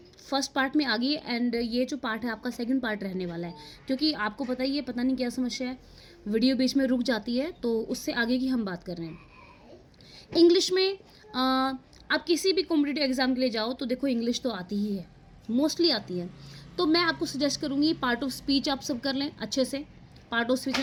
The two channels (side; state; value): both; identical; correlation 1.00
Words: फर्स्ट पार्ट में आ गई एंड ये जो पार्ट है आपका सेकंड पार्ट रहने वाला है, क्योंकि आपको पता ही है, पता नहीं क्या समस्या है, वीडियो बीच में रुक जाती है, तो उससे आगे की हम बात कर रहे हैं। इंग्लिश में आप किसी भी कॉम्पिटिटिव एग्जाम के लिए जाओ तो देखो इंग्लिश तो आती ही है, मोस्टली आती है। तो मैं आपको सजेस्ट करूँगी पार्ट ऑफ स्पीच आप सब कर लें अच्छे से। पार्ट ऑफ स्पीच